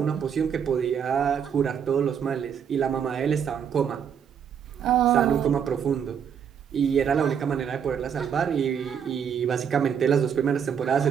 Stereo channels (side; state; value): left; quieter; 7.8 dB